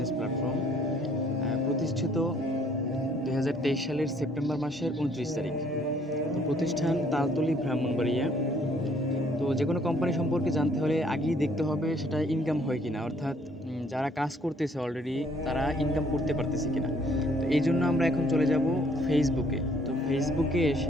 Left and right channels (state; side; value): normal; both; correlation 0.63